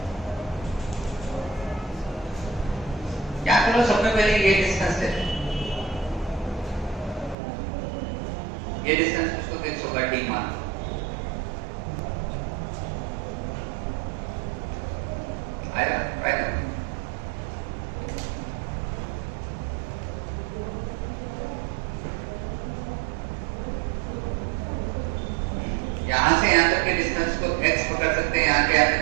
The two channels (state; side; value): drops out; left; at 7.4 s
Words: सबसे पहले ये डिस्टेंस है, ये डिस्टेंस उसको फिक्स होगा डी मान। आएगा राइट। यहां से यहां तक के डिस्टेंस को x पकड़ सकते हैं, यहां के यहां तक